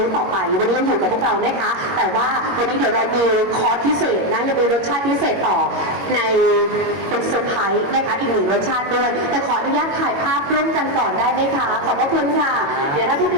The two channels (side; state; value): left; late; 22 ms